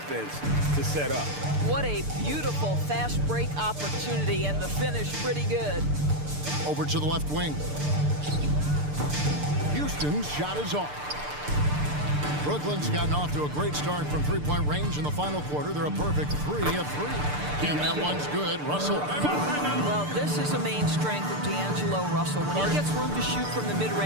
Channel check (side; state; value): left; late; 6.8 ms